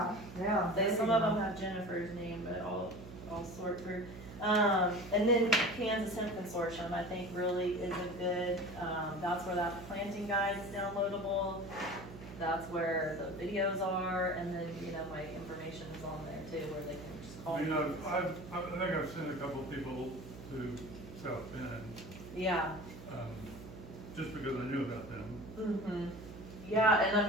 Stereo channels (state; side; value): noise; right; hum, 13 dB below the sound